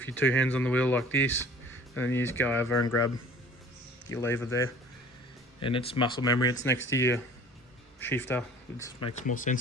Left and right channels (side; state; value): both; normal; correlation 0.47